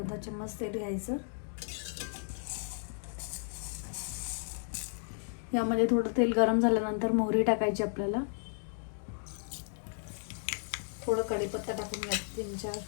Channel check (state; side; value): silent; right; digital silence